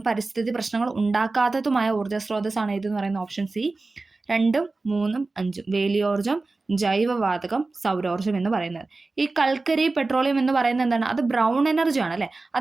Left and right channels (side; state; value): left; quieter; 3.5 dB